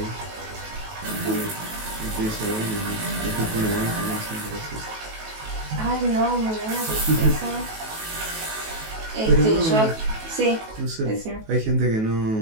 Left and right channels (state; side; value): late; left; 18 ms